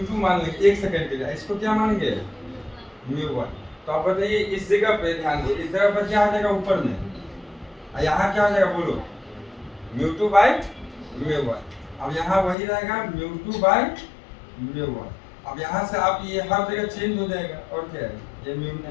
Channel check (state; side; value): drops out; right; at 12.6 s